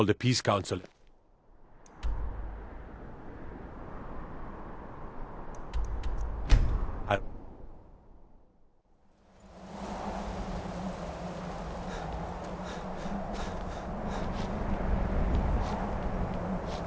a peace council.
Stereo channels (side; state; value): both; identical; correlation 1.00